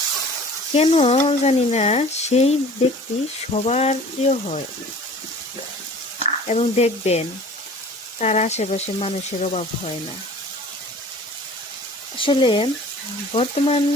কেন জানি না সেই ব্যক্তি সবার প্রিয় হয়। এবং দেখবেন তার আশেপাশে মানুষের অভাব হয় না। আসলে বর্তমান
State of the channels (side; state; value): both; normal; correlation 0.45